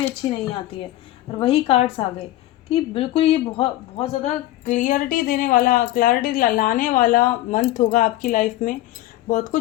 अच्छी नहीं आती है, और वही कार्ड्स आ गए कि बिल्कुल ये बहुत बहुत ज़्यादा क्लियरिटी देने वाला, क्लैरिटी लाने वाला मंथ होगा आपकी लाइफ में। बहुत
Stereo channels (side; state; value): right; quieter; 15.4 dB